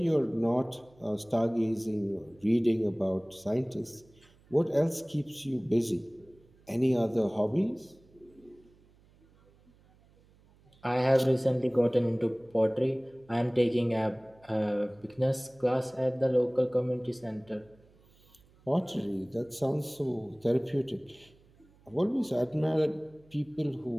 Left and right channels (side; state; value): right; noise; hum, 29 dB below the sound